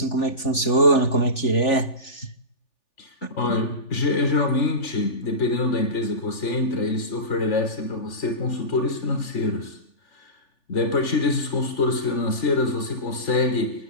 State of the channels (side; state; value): right; late; 3.4 ms